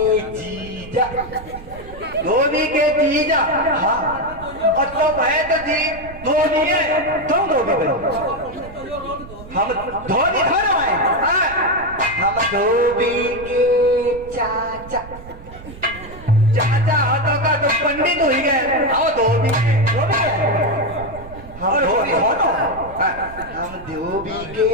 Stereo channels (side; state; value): right; noise; rumble, 16 dB below the sound